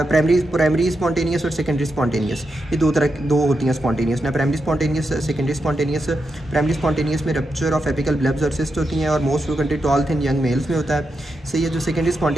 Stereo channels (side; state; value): both; normal; correlation 0.86